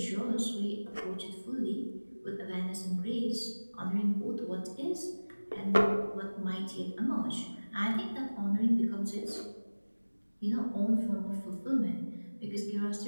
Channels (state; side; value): inverted; both; correlation -1.00